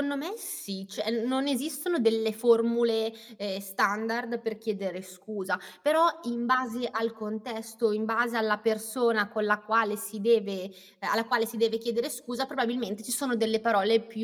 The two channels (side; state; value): both; identical; correlation 1.00